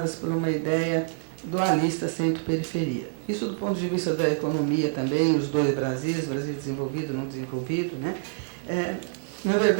por uma ideia dualista centro-periferia. Isso do ponto de vista da economia também, os dois Brasis, Brasil desenvolvido e não desenvolvido, né? Na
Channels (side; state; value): left; silent; digital silence